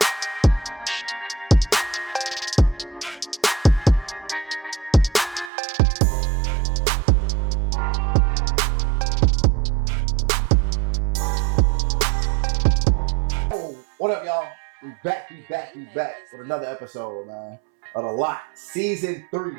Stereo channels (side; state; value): left; drops out; at 5.5 s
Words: What up, y'all? We back with another episode, man, of The Lot, Season 3,